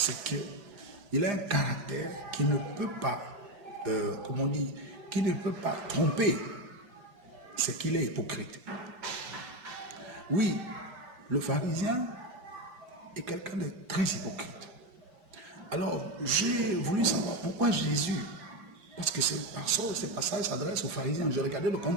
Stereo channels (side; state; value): left; late; 5.9 ms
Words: qu'il a un caractère qui ne peut pas, qui ne peut pas tromper, c'est qu'il est hypocrite. Oui, le pharisien est quelqu'un de très hypocrite. Alors, j'ai voulu savoir pourquoi Jésus, parce que ces passages s'adressent aux pharisiens. Je regardais le